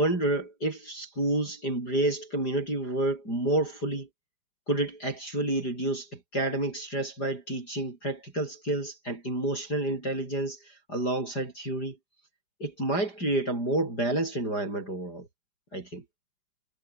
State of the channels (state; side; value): late; right; 4.9 ms